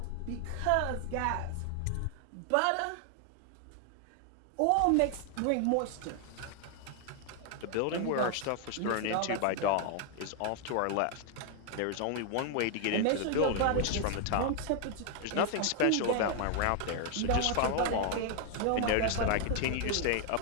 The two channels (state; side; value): different; both; correlation 0.00